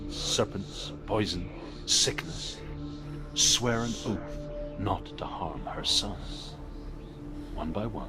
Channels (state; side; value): identical; both; correlation 1.00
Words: serpents, poison, sickness. Swear an oath not to harm her son. One by